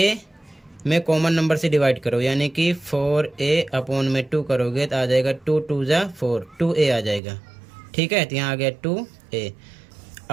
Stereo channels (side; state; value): left; drops out; at 7.2 s